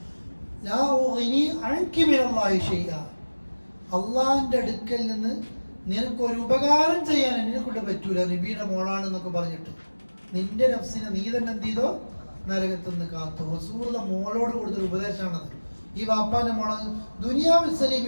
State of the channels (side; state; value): both; inverted; correlation -1.00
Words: അള്ളാഹിന്റെ അടുക്കൽ നിന്ന് നിനക്കൊരു ഉപകാരം ചെയ്യാൻ എന്നെ കൊണ്ട് പറ്റൂല, നബിയുടെ മോളാണെന്നൊക്കെ പറഞ്ഞിട്ട് നിന്റെ നഫ്സിനെ നീ തന്നെ എന്ത് ചെയ്തോ? നരകത്തിൽ നിന്ന് കാത്തു. റസൂലുള്ള മോളോട് കൊടുത്തൊരു ഉപദേശമാണത്. ഈ വാപ്പാന്റെ മോള ദുനിയാവിൽ